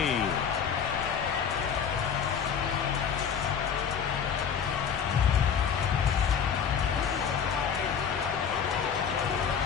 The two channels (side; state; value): right; quieter; 7.3 dB